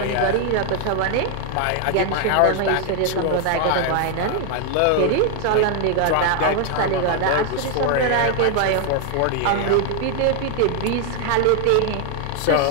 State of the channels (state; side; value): different; both; correlation 0.00